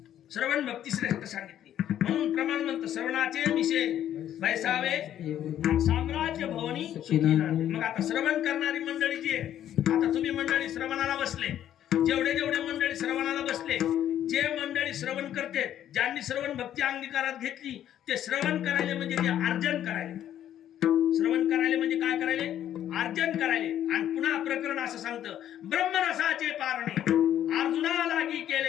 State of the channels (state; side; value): quieter; right; 11.0 dB